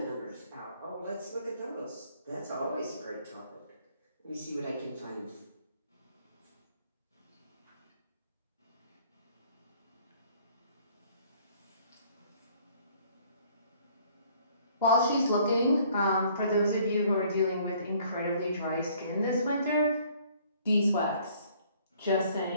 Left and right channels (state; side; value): inverted; both; correlation -0.60